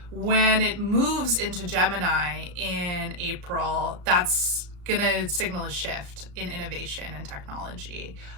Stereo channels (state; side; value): late; left; 34 ms